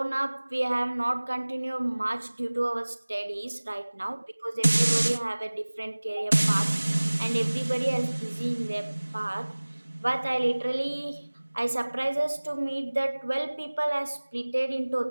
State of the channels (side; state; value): both; inverted; correlation -1.00